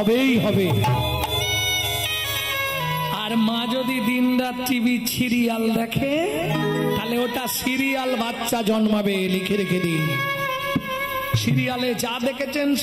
হবে। আর মা যদি দিন রাত টিভি সিরিয়াল দেখে, তাহলে ওটা সিরিয়াল বাচ্চা জন্মাবে। লিখে রেখে দিন, সিরিয়ালে যা দেখেছেন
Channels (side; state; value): both; identical; correlation 1.00